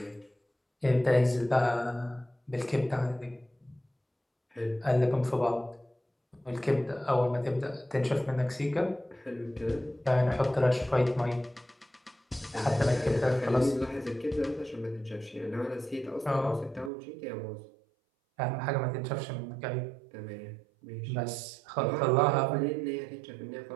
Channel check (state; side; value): drops out; left; at 16.9 s